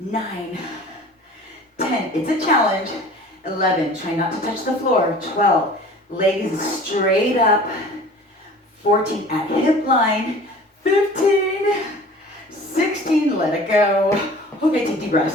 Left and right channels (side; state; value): both; normal; correlation 0.44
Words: 10, it's a challenge. 11, try not to touch the floor. 12, legs straight up. 14, at hip line. 15, 16, let it go. Okay, take deep